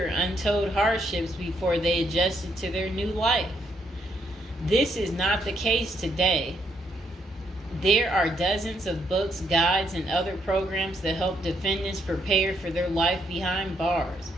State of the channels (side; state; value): both; normal; correlation 0.74